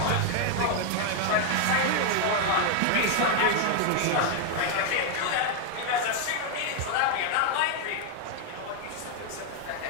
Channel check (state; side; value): different; both; correlation 0.00